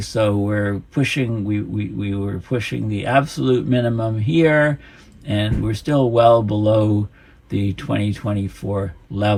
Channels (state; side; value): identical; both; correlation 1.00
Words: so we're pushing, we were pushing the absolute minimum here, and we're still well below the 2024